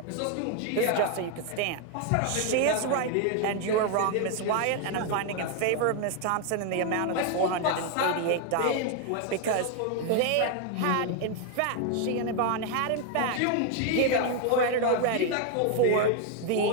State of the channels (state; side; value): different; both; correlation 0.01